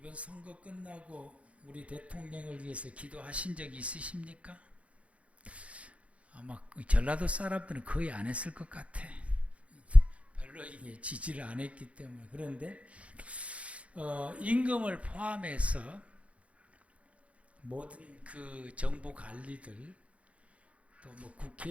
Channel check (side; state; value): left; late; 0.064 ms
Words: 선거 끝나고 우리 대통령을 위해서 기도하신 적이 있으십니까? 아마 전라도 사람들은 거의 안 했을 것 같아. 별로 이게 지지를 안 했기 때문에. 그런데 임금을 포함해서 모든 그 정부 관리들, 또 뭐